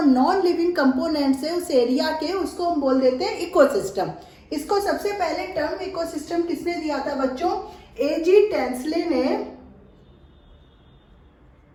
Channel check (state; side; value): identical; both; correlation 1.00